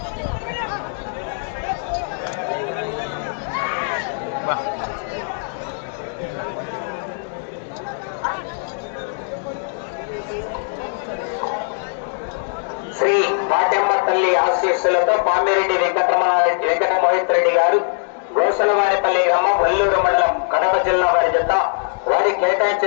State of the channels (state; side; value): silent; right; digital silence